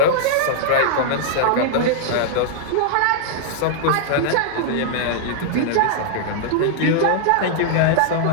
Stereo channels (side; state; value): both; different; correlation -0.01